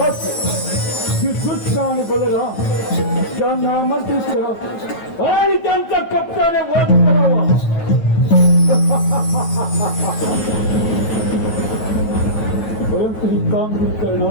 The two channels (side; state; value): right; late; 9.1 ms